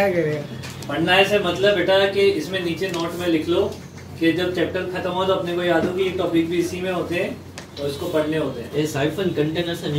करेगा? पढ़ना है से मतलब बेटा कि इसमें नीचे नोट में लिख लो कि जब चैप्टर खत्म हो तो अपने को याद हो कि ये टॉपिक भी इसी में होते हैं और इसको पढ़ने होते हैं। ये साइफन कंटेनर से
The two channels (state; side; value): identical; both; correlation 1.00